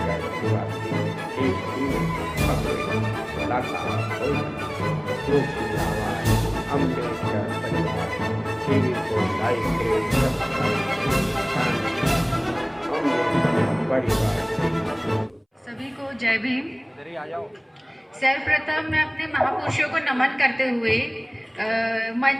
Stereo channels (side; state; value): both; identical; correlation 1.00